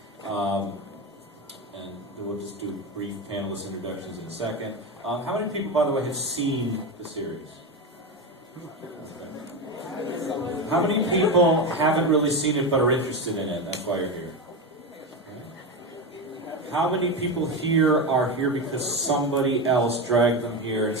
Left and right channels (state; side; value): normal; both; correlation 0.17